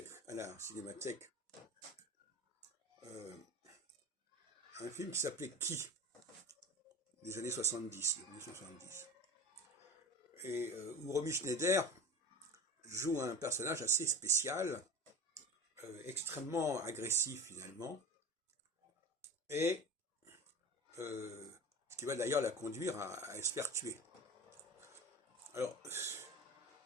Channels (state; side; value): normal; both; correlation 0.32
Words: à la cinémathèque, euh, un film qui s'appelait Qui des années 70, 1970, et où Romy Schneider joue un personnage assez spécial, extrêmement agressif finalement, et ce qui va d'ailleurs la conduire à se faire tuer. Alors,